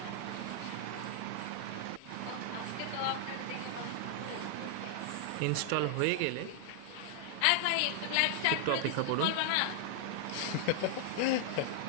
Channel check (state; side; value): different; both; correlation -0.01